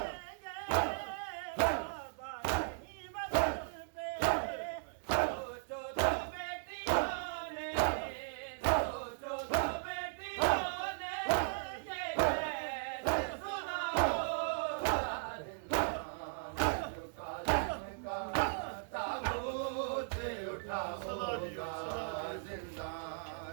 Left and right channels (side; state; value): left; silent; digital silence